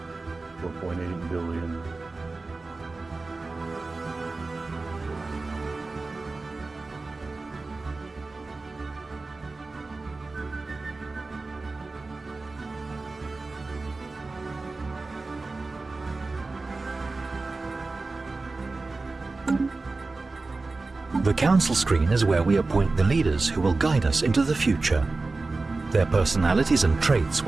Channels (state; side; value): quieter; left; 3.6 dB